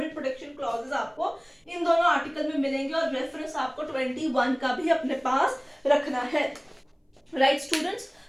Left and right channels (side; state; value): both; identical; correlation 1.00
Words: प्रोटेक्शन क्लॉजेस आपको इन दोनों आर्टिकल में मिलेंगे और रेफरेंस आपको 21 का भी अपने पास रखना है। राइट स्टूडेंट्स,